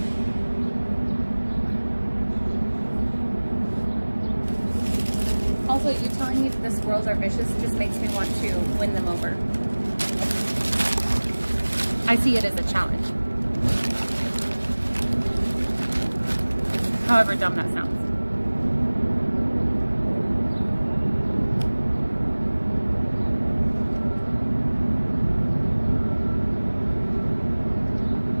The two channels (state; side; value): inverted; both; correlation -1.00